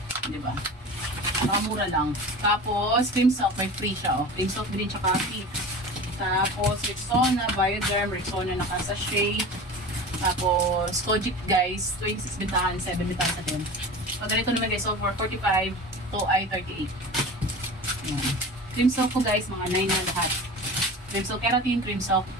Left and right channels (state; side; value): normal; both; correlation 0.34